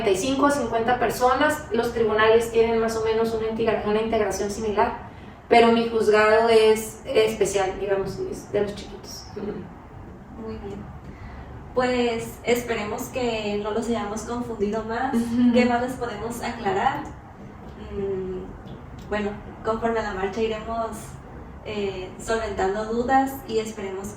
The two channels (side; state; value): both; identical; correlation 1.00